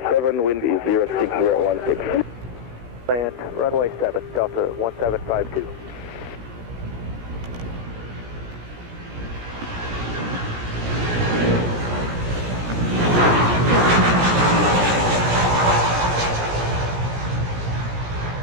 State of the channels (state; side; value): late; left; 17 ms